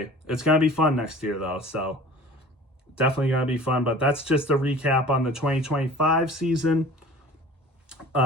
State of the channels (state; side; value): normal; both; correlation 0.44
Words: it's going to be fun next year though. So definitely going to be fun. But that's just a recap on the 2025 season.